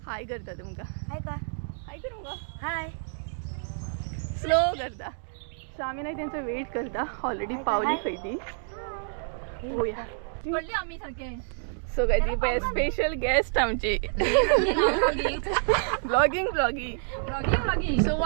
हाय करता तुमकां. हाय कर मुगो. हाय स्लो करता. सो आमी न्हय तेंचो वेट करता. ऑलरेडी पावली खंय ती. पळोवया पडली आमी सारके. सो काय ती पळय स्पेशल गेस्ट आमची. ब्लॉगिंग. सो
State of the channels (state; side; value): silent; left; digital silence